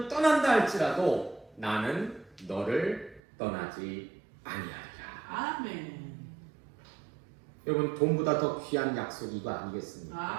떠난다 할지라도 나는 너를 떠나지 아니하리라. 아멘. 여러분, 돈보다 더 귀한 약속이 이거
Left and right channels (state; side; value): drops out; left; at 3.2 s